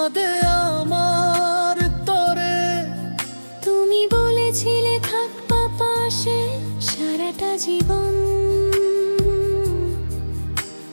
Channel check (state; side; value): inverted; both; correlation -1.00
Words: আমার তরে। তুমি বলেছিলে থাকবা পাশে সারাটা জীবন,